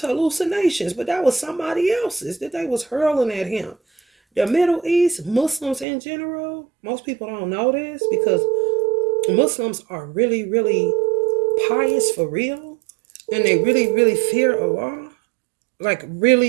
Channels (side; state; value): left; drops out; at 5.9 s